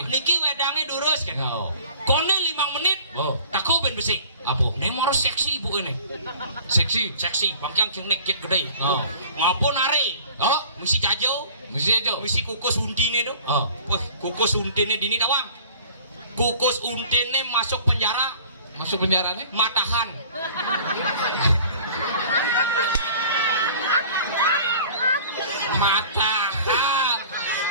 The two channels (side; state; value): both; inverted; correlation -0.46